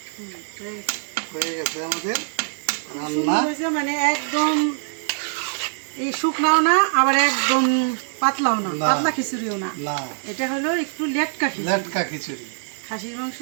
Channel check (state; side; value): silent; left; 63 dB below the other